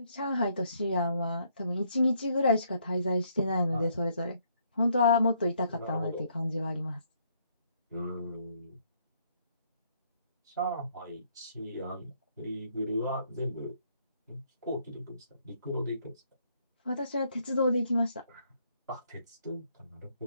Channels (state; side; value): inverted; both; correlation -0.69